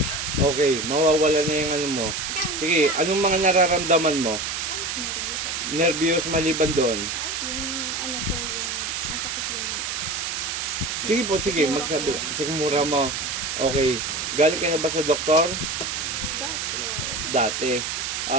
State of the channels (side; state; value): right; noise; hiss, 3 dB below the sound